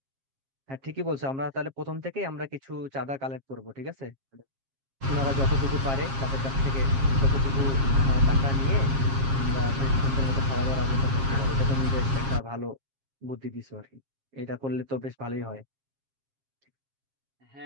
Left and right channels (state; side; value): late; left; 7.4 ms